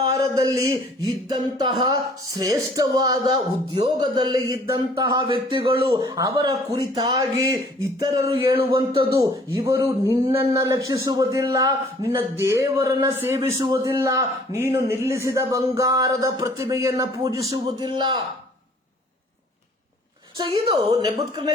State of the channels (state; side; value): normal; both; correlation 0.56